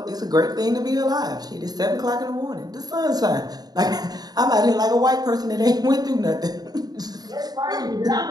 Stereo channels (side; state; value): left; late; 0.19 ms